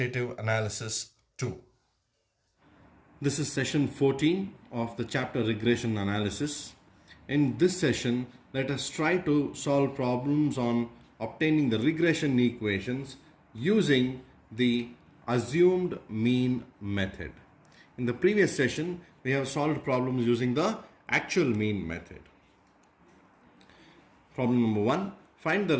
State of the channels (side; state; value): both; identical; correlation 1.00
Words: analysis 2. This is session 14 of the chapter regression analysis. In this session, let us try to solve problems on obtaining the regression equations using the assumed mean method. In the previous session, we have solved problems using the actual mean method. Problem number 1. Find the